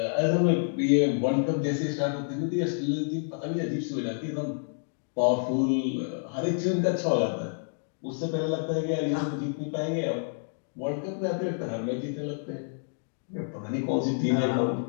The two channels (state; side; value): silent; right; digital silence